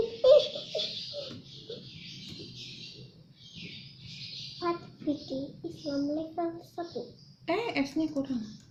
Fikih Islam level 1. S-nya kurang.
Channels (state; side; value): identical; both; correlation 1.00